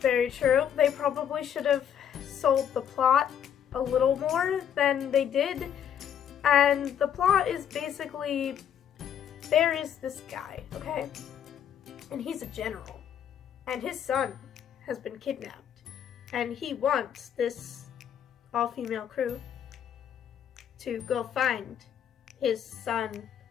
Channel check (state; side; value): quieter; right; 9.1 dB